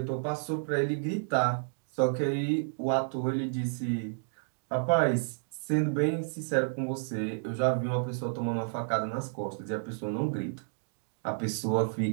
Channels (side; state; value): left; silent; digital silence